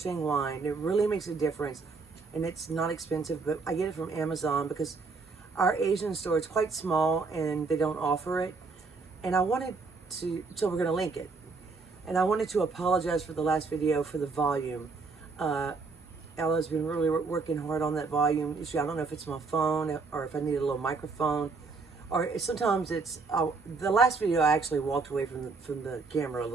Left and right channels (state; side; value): quieter; left; 4.2 dB